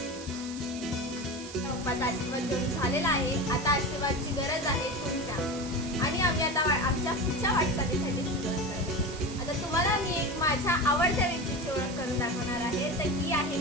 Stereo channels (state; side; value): noise; right; hiss, 14 dB below the sound